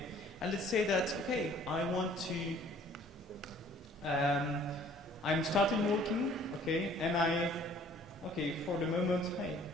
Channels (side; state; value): both; normal; correlation 0.55